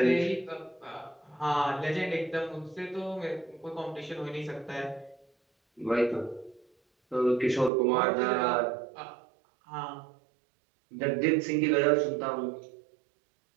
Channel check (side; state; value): left; drops out; at 7.7 s